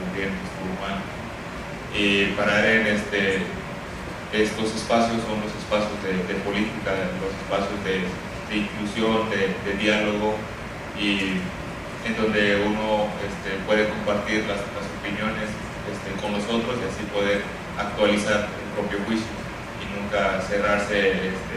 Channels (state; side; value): identical; both; correlation 1.00